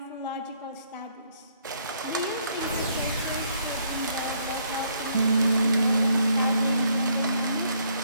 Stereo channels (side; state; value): both; inverted; correlation -0.68